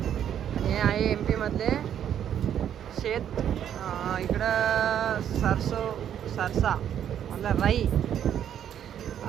हे आहे MP मधले शेत इकडं सरसा मतलब राई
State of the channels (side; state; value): left; quieter; 9.7 dB